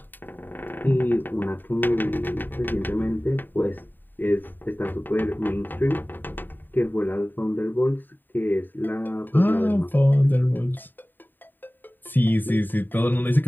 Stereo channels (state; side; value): late; right; 0.091 ms